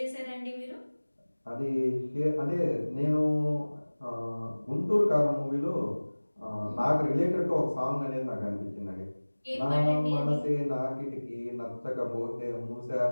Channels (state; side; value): inverted; both; correlation -1.00